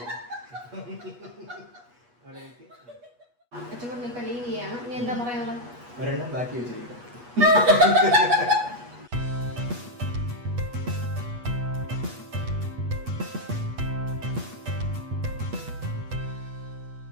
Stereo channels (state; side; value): late; left; 8.3 ms